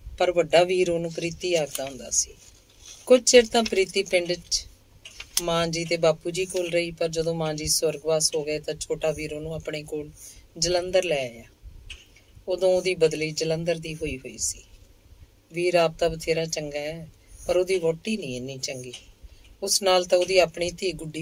ਸੀ। ਕੁਝ ਚਿਰ ਤਾਂ ਪ੍ਰੀਤੀ ਪਿੰਡ 'ਚ ਮਾਂ ਜੀ ਤੇ ਬਾਪੂ ਜੀ ਕੋਲ ਰਹੀ, ਪਰ ਜਦੋਂ ਮਾਂ ਜੀ ਸਵਰਗਵਾਸ ਹੋ ਗਏ ਤਾਂ ਛੋਟਾ ਵੀਰ ਉਹਨੂੰ ਆਪਣੇ ਕੋਲ ਜਲੰਧਰ ਲੈ ਆਇਆ। ਉਦੋਂ ਉਹਦੀ ਬਦਲੀ ਜਲੰਧਰ ਦੀ ਹੋਈ ਸੀ। ਵੀਰ ਆਪ ਤਾਂ ਬਥੇਰਾ ਚੰਗਾ ਹੈ, ਪਰ ਉਹਦੀ ਵਹੁਟੀ ਨਹੀਂ ਇੰਨੀ ਚੰਗੀ। ਉਸ ਨਾਲ ਤਾਂ ਉਹਦੀ ਆਪਣੀ ਧੀ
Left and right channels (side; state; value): both; identical; correlation 1.00